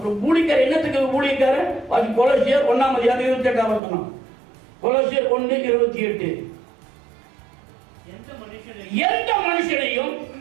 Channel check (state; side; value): drops out; left; at 3.8 s